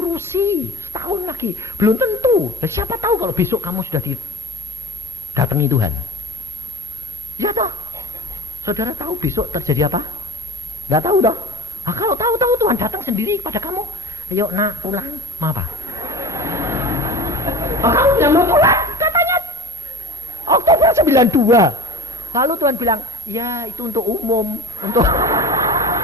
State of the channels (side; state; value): both; normal; correlation 0.31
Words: tahun lagi. Belum tentu. Dan siapa tahu kalau besok kamu sudah didatangi Tuhan. Ya toh. Saudara tahu besok terjadi apa? Gak tahu toh. Nah, kalau tahu Tuhan datang sendiri kepada kamu. Ayo nak pulang. Mau apa? Oh, kamu bilang mau pulang? Katanya Oktober 92. Lalu Tuhan bilang, ya itu untuk umum.